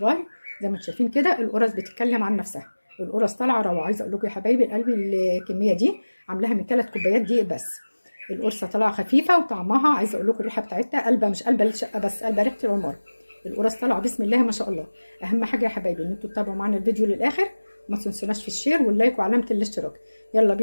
زي ما انتم شايفين كده القرص بتتكلم عن نفسها، القرص طالعه روعه. عايزه اقول لكم يا حبايبي قلبي الكميه دي عاملاها من 3 كوبايات دقيق بس. القرصه طالعه خفيفه وطعمها، عايزه اقول لكم الريحه بتاعتها قلبه، مش قلبه الشقه بس، قلبه ريحه العمر. القرص طالعه بسم الله ما شاء الله. اهم حاجه يا حبايبي ان انتوا تتابعوا معانا الفيديو للاخر، وما تنسوناش في الشير واللايك وعلامه الاشتراك. يلا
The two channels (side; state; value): both; inverted; correlation -1.00